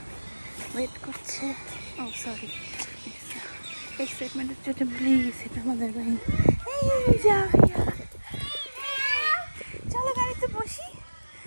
ওয়েট করছে। ও সরি, এক্সাইটমেন্টের জন্য ভুলে গেছি এটা আমাদের বাড়ি। এই যে আফিয়া, চলো গাড়িতে বসি,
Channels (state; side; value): inverted; both; correlation -1.00